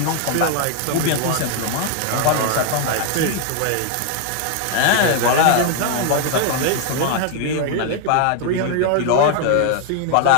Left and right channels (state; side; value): different; both; correlation 0.00